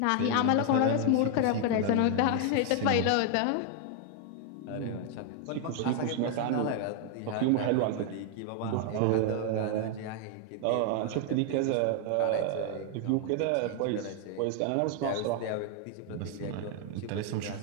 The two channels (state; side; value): different; both; correlation 0.00